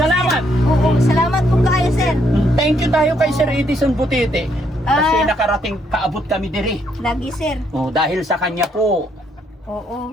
Sir. Oo, salamat po kayo, sir. Thank you tayo kay Sir Edison Butete. Kasi Ah. nakarating kaabot kami diri. Lagi, sir. Oh, dahil sa kanya po. Oo.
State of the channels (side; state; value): both; normal; correlation 0.72